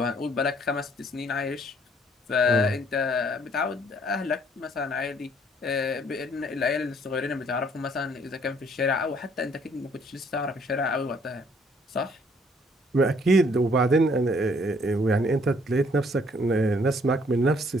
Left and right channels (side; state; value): both; normal; correlation 0.63